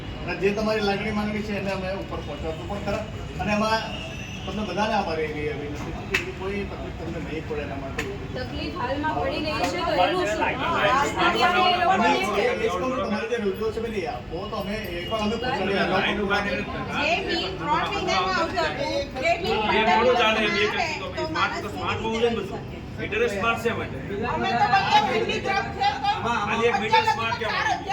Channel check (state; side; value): identical; both; correlation 1.00